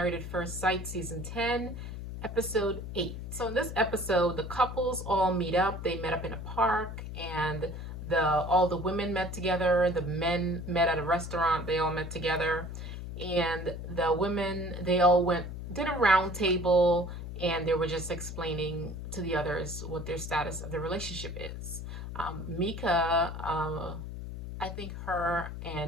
at First Sight Season 10, Episode 8. So in this episode, the couples all meet up. They met up in a park and all the women met together, the men met at a restaurant, they all met together. And the women, they all did a round table and they were just explaining to the others what their status of the relationship is. Mika, I think her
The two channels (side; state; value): left; noise; hum, 8 dB below the sound